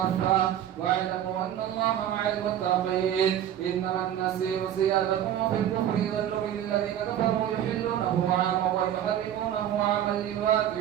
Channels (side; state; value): left; quieter; 10.7 dB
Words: واعلموا أن الله مع المتقين. إنما النسيء زيادة في الكفر يضل به الذين كفروا يحلونه عاما ويحرمونه عاما